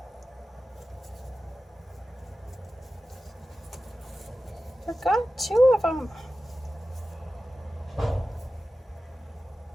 I forgot 2 of them.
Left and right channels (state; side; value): normal; both; correlation 0.94